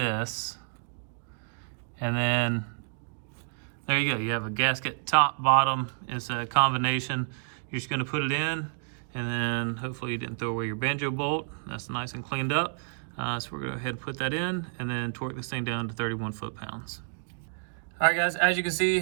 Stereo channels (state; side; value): silent; left; digital silence